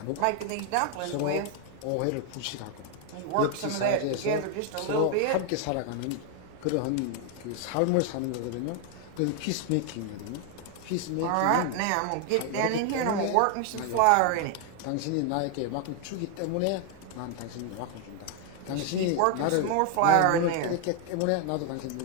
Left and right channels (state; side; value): different; both; correlation 0.01